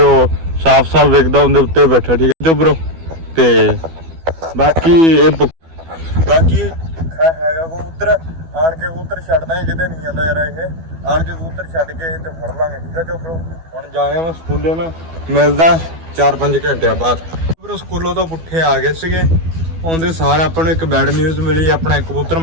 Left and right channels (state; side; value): late; left; 12 ms